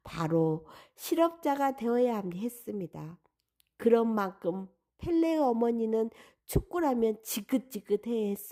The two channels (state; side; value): identical; both; correlation 1.00